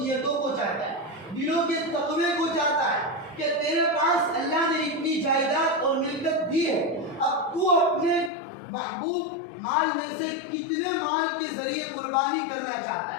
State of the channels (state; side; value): drops out; right; at 8.3 s